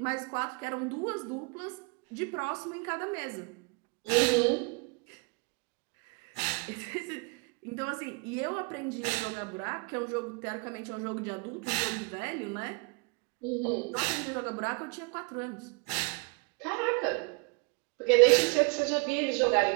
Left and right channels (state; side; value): quieter; left; 31.1 dB